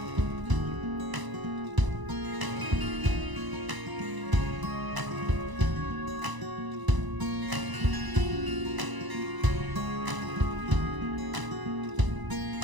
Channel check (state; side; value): late; left; 1.0 ms